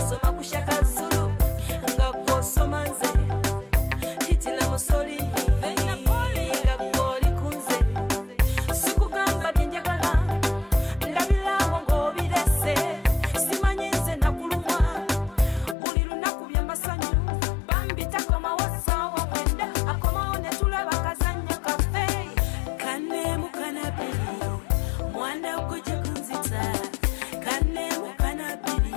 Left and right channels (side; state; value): right; drops out; at 15.8 s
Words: ku shakazulu nga gwosoma nze hitila musoli nga gwoli kunze sikugamba byenjagala ndabirawo ng'obirese simanyi nze nakulumwa buli lunaku byamasanyu bambi takomawo ssaawa mwenda akomawo ne tulaba kazannya kaffe kanneemu kanabiri mwana gujja kunzita kanneemu kanabiri